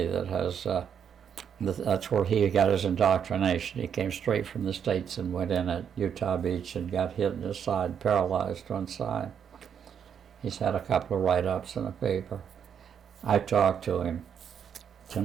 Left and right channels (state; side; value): quieter; left; 7.9 dB